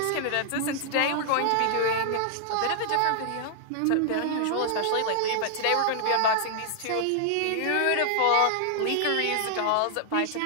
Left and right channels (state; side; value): different; both; correlation -0.01